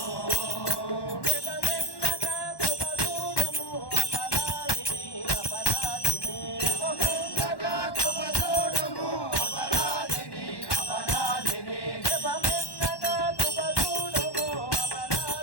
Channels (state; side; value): late; right; 1.1 ms